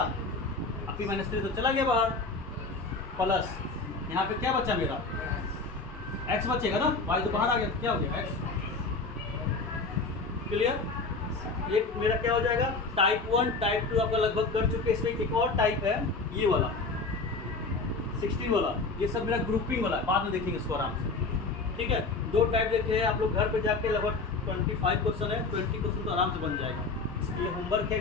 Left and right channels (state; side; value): quieter; right; 3.8 dB